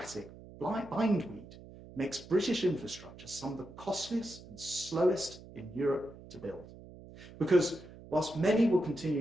bindweed makes British infrastructure some of the costliest and slowest in Europe to build. Because whilst many will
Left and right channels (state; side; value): noise; right; hum, 17 dB below the sound